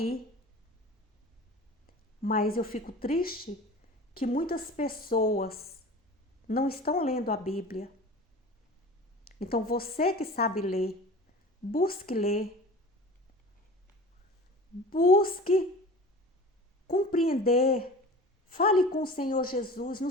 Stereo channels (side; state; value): both; normal; correlation 0.39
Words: Mas eu fico triste que muitas pessoas não estão lendo a Bíblia. Então você que sabe ler, busque ler. Busque compreender. Fale com o Senhor Jesus no